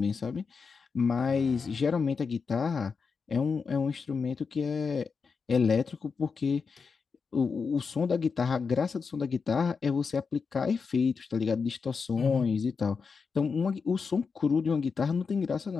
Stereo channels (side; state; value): right; quieter; 5.3 dB